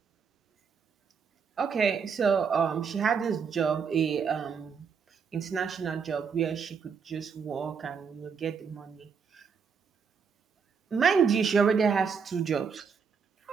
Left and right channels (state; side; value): quieter; left; 6.2 dB